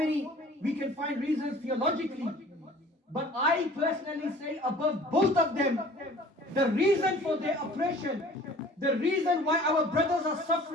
we can find reasons theologically. But I personally say above both of them, the reason for their oppression, the reason why our brothers are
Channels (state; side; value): normal; both; correlation 0.48